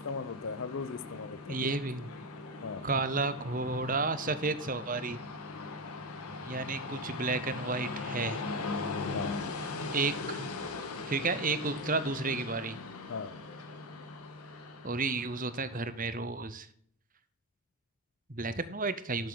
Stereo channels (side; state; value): both; normal; correlation 0.14